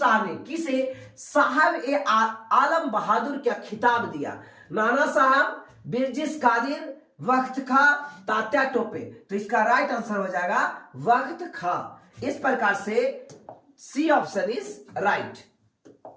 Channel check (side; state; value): both; identical; correlation 1.00